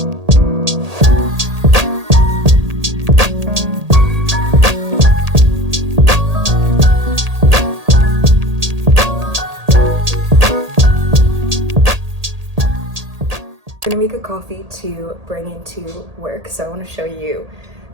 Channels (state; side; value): late; left; 1.8 ms